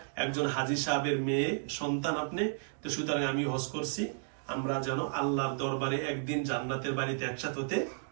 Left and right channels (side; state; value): left; silent; digital silence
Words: একজন হাজী সাহেবের মেয়ে সন্তান আপনি, তো সুতরাং আমি হজ করছি। আমরা যেন আল্লাহর দরবারে একদিন জান্নাতের বাড়িতে একসাথে হতে